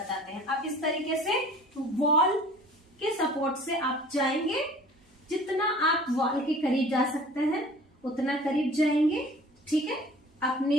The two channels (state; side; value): normal; both; correlation 0.47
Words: हैं। आप इस तरीके से वॉल के सपोर्ट से आप जाएंगे, जितना आप वॉल के करीब जा सकते हैं उतना करीब जाएंगे, ठीक है, अपने